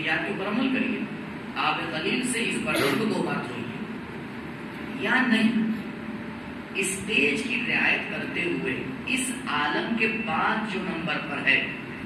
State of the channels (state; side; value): identical; both; correlation 1.00